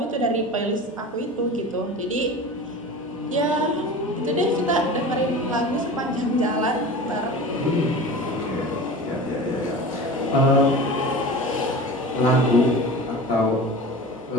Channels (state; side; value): normal; both; correlation 0.34